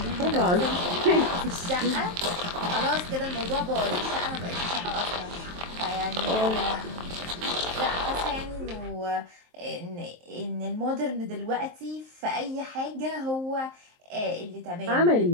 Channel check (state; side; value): late; left; 23 ms